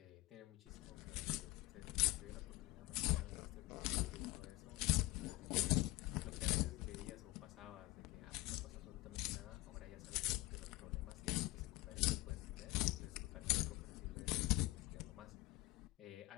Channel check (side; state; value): right; quieter; 19.8 dB